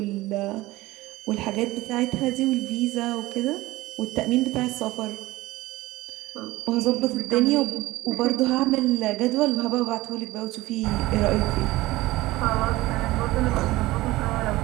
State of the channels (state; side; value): quieter; left; 18.8 dB